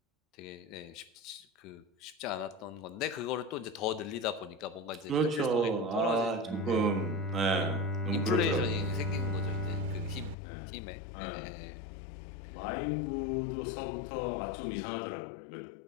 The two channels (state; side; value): drops out; right; at 10.4 s